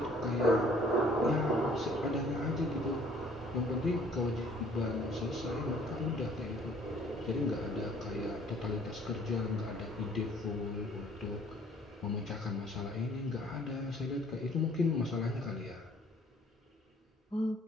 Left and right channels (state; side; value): normal; both; correlation 0.57